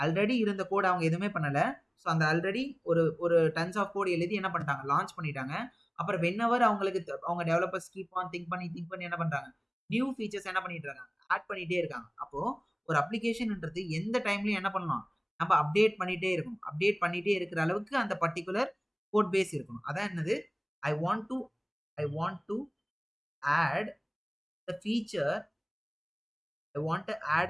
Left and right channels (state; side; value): identical; both; correlation 1.00